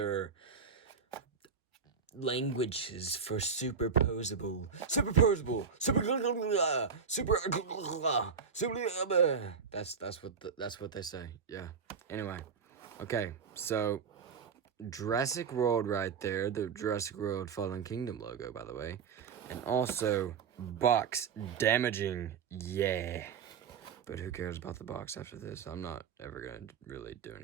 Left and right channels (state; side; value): quieter; left; 6.1 dB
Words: languages for superposable, that's what they say. Yeah. Anyway, okay, so Jurassic World right there, the Jurassic World Fallen Kingdom logo, by the way, and also box damaging, yeah. But who cares about the box after this? I'm not ever going to really do